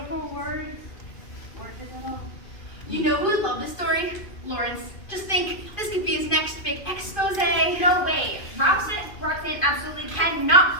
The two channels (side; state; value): right; late; 2.5 ms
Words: words weren't his at all. You know who would love this story? Lawrence. Just think, this could be his next big expose. No way. Roxanne absolutely cannot